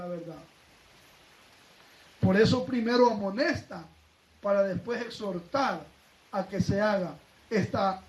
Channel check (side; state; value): both; identical; correlation 1.00